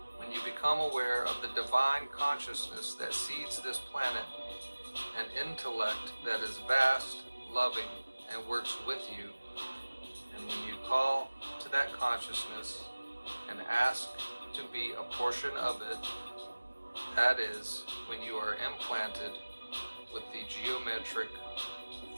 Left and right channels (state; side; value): inverted; both; correlation -1.00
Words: When you become aware of the divine consciousness that seeds this planet, an intellect that is vast, loving, and works with you, and when you call to that consciousness and ask to be a portion of it, that is when you are implanted with the geometric